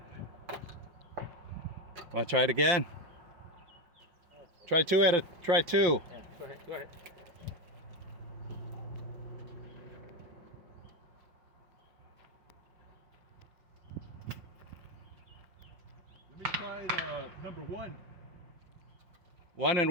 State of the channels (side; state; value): left; late; 5.8 ms